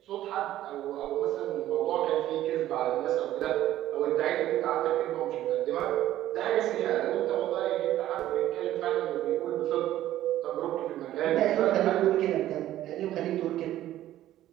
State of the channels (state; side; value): quieter; left; 13.5 dB